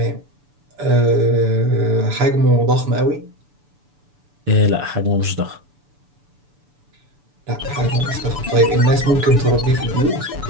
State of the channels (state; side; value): late; left; 6.9 ms